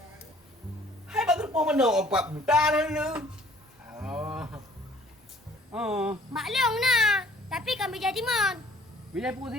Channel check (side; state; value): both; normal; correlation 0.56